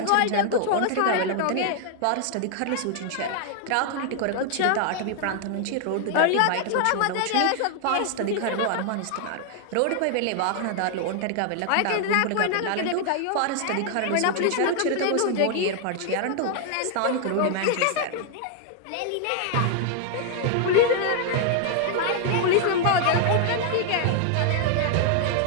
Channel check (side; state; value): both; different; correlation 0.00